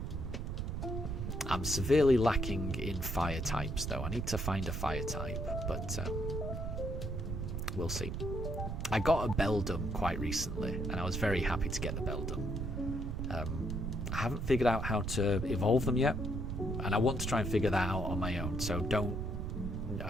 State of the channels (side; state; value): right; noise; rumble, 3 dB below the sound